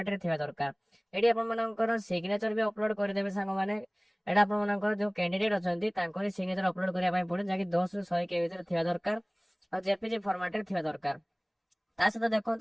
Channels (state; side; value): identical; both; correlation 1.00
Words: ଥିବା ଦରକାର। ଏଠି ଆପଣମାନଙ୍କର ସିଗ୍ନେଚର ବି ଅପଲୋଡ କରିଦେବେ ସାଙ୍ଗମାନେ। ଏଟା ଆପଣମାନଙ୍କର ଯୋଉ କ୍ୟାଣ୍ଡିଡେଟ ଅଛନ୍ତି ତାଙ୍କର ସିଗ୍ନେଚର ଅପଲୋଡ କରିବା ପାଇଁ ପଡିବ, ଯାହାକି 10 ରୁ 100 KB ଭିତରେ ଥିବା ଦରକାର ଆଉ ଜେପିଜି ଫର୍ମାଟରେ ଥିବା ଦରକାର। ତା ସହିତ